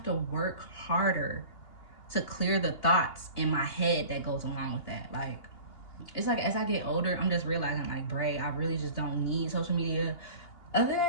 to work harder to clear the thoughts in my head that goes along with that. Like, it's like as I get older, I'm just realizing, like, Bray, I really just don't need social media. Other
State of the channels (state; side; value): late; right; 2.8 ms